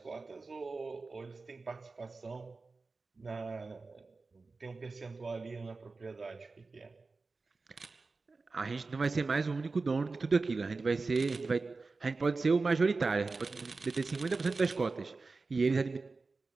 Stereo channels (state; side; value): quieter; left; 3.9 dB